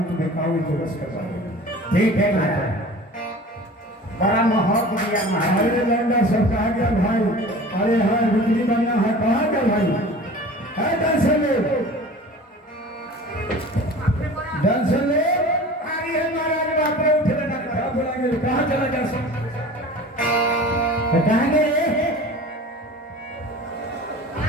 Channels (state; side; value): normal; both; correlation 0.40